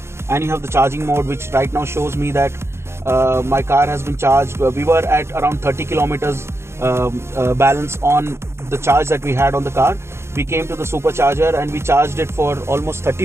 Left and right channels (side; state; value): left; late; 0.13 ms